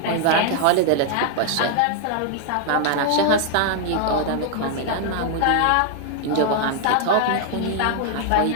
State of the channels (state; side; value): different; both; correlation 0.00